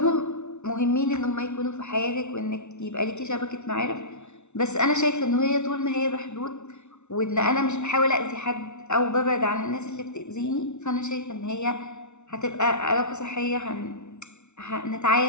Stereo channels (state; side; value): late; right; 0.82 ms